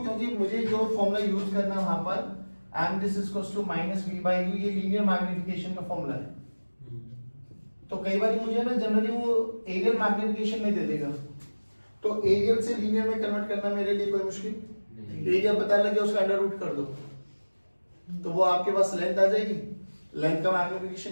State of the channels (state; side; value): inverted; both; correlation -1.00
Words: क्योंकि मुझे जो फॉर्मूला यूज करना है वहां पर m this is equals to -v/u, ये लीनियर मैग्निफिकेशन का फॉर्मूला है। तो कई बार मुझे ना जनरली वो एरियल मैग्निफिकेशन में दे देगा, तो एरियल से लीनियर में कन्वर्ट करना मेरे लिए कोई मुश्किल नहीं। एरिया पता लगे उसका अंडर रूट कर दो, तो वो आपके पास लेंथ आ जाएगी। लेंथ का